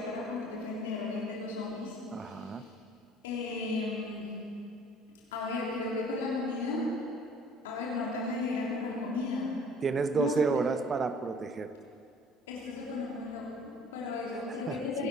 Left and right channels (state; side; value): normal; both; correlation 0.51